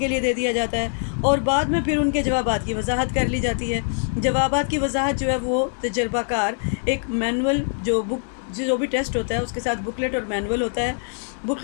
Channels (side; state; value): right; silent; 63 dB below the other